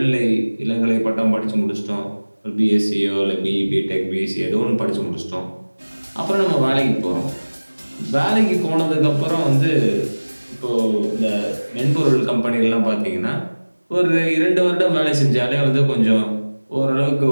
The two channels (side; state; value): both; inverted; correlation -1.00